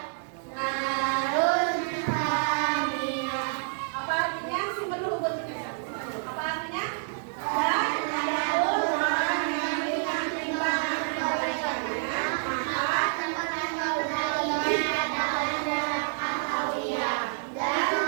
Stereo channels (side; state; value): left; silent; 56 dB below the other